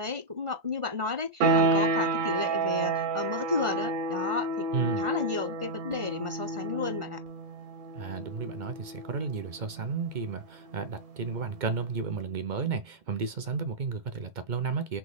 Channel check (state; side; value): late; left; 2.2 ms